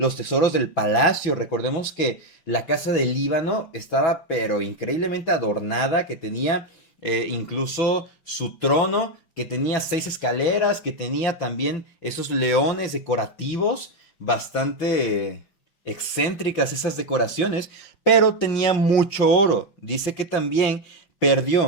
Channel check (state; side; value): late; right; 5.7 ms